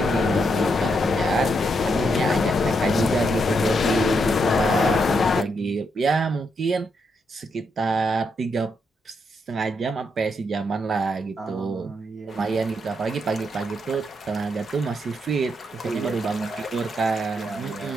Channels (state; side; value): normal; both; correlation 0.79